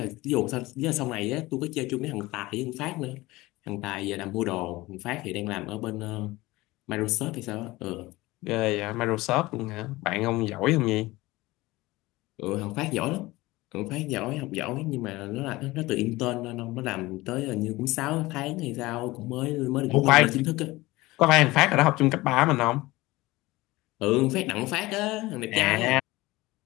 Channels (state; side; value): quieter; right; 20.0 dB